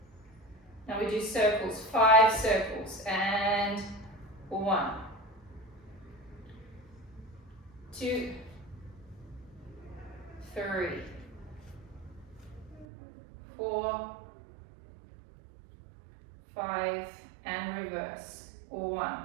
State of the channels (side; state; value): left; drops out; at 12.9 s